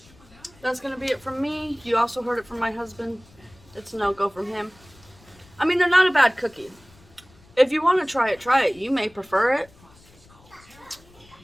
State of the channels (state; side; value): noise; left; rumble, 27 dB below the sound